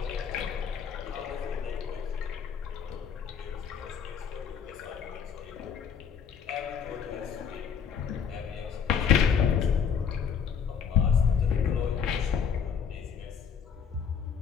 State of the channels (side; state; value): right; quieter; 7.1 dB